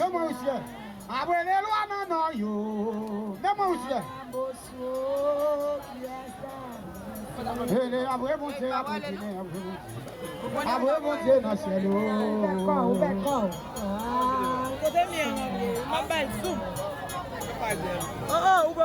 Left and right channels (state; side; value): identical; both; correlation 1.00